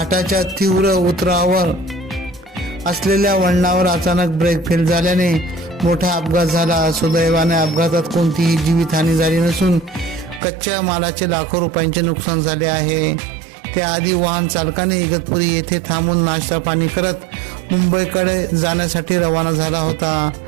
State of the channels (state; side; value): drops out; left; at 10.4 s